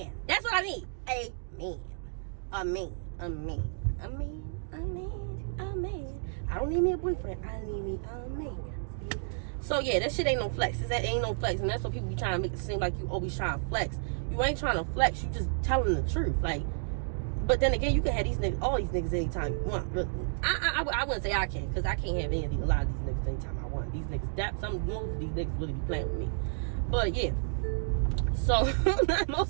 That's what I need. A man. A man. A man. A man. A man. A man. I don't need me a boyfriend. I need me a man. So yeah, that shit ain't no flex. That ain't no flex. And that's what people be trying to make it seem like you always trying to flex. You ain't trying to flex. You just telling the truth. Like, but then again, you can have these niggas, all these niggas anytime you want. I wouldn't say I can, because I can't have a lot of these niggas anytime I want. These niggas, most of these niggas really be playing with me. But yeah, so most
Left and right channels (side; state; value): left; silent; digital silence